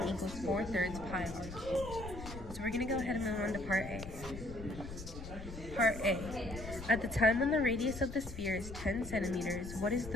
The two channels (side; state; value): left; noise; rumble, 11 dB below the sound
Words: equals 4/3 pi r cubed. So we're going to go ahead and move on to part A. Part A. At the time when the radius of the sphere is 10 centimeters, what is